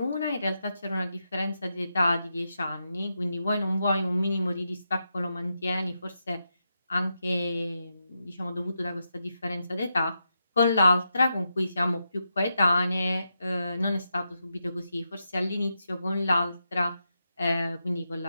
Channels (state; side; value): inverted; both; correlation -0.86